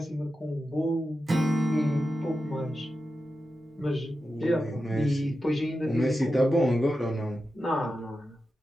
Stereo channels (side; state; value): both; normal; correlation 0.91